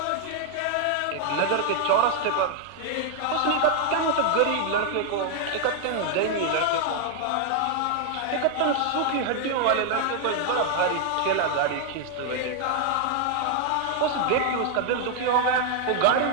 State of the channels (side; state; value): both; different; correlation 0.00